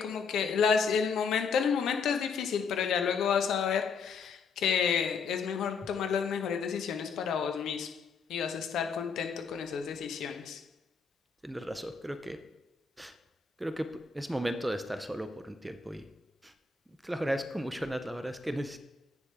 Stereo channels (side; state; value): right; quieter; 5.2 dB